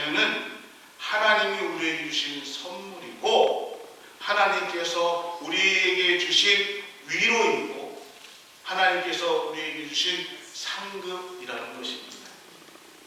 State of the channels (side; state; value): both; identical; correlation 1.00